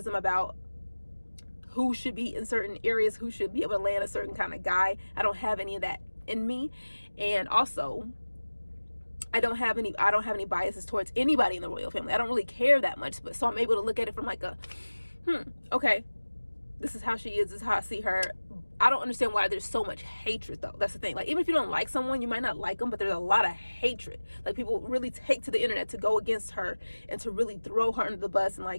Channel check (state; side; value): inverted; both; correlation -1.00